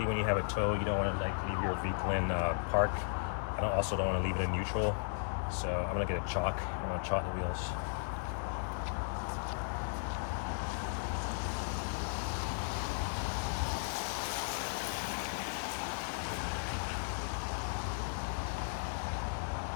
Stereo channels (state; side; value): silent; right; digital silence